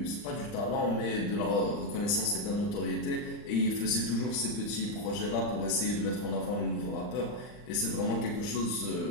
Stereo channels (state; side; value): late; right; 39 ms